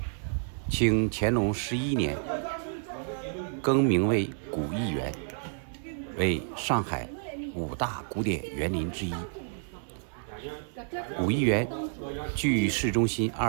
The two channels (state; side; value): silent; left; 58 dB below the other